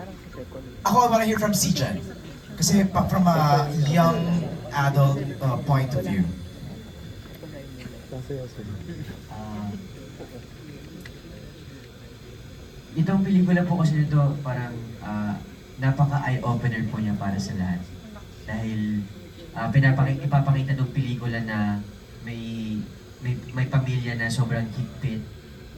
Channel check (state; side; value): identical; both; correlation 1.00